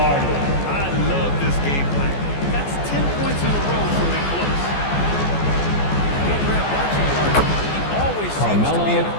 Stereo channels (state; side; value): late; right; 14 ms